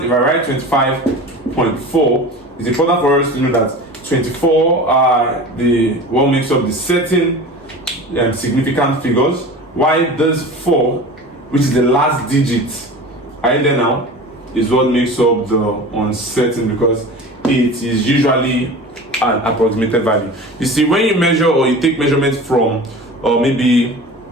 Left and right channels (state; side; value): normal; both; correlation 0.35